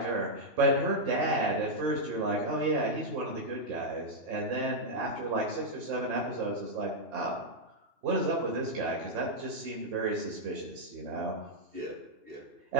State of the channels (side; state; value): left; late; 2.8 ms